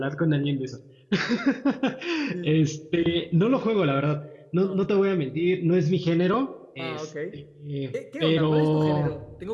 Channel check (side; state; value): both; identical; correlation 1.00